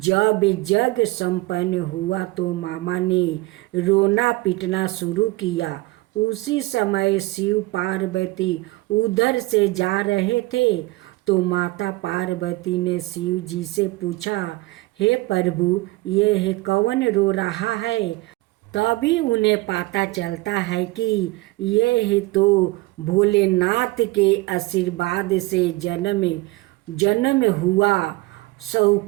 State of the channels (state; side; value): quieter; left; 21.1 dB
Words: जग संपन्न हुआ तो मामा ने रोना पीटना शुरू किया। उसी समय शिव पार्वती उधर से जा रहे थे तो माता पार्वती ने शिव जी से पूछा, हे प्रभु, ये कौन रो रहा है? तभी उन्हें पता चलता है कि यह तो भोलेनाथ के आशीर्वाद से जन्म हुआ